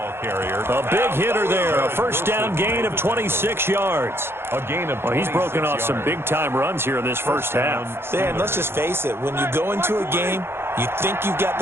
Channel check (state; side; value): late; left; 0.11 ms